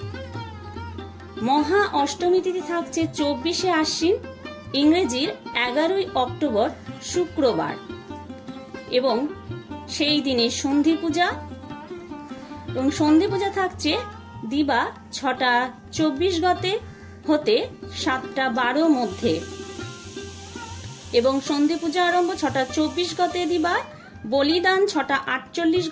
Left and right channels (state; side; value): identical; both; correlation 1.00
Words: মহা অষ্টমী তিথি থাকছে 24শে আশ্বিন ইংরেজির 11ই অক্টোবর শুক্রবার এবং সেই দিনে সন্ধি পূজা এবং সন্ধি পূজা থাকছে দিবা 6টা 24 গতে হতে 7টা 12 মধ্যে এবং সন্ধি পূজা আরম্ভ 6টা 24 গতে দিবা, বলিদান 6টা 48